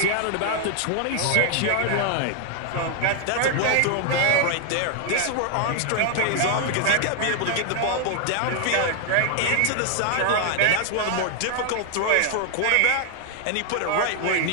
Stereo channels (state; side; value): different; both; correlation 0.00